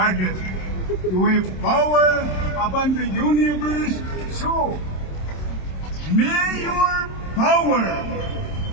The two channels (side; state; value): right; late; 27 ms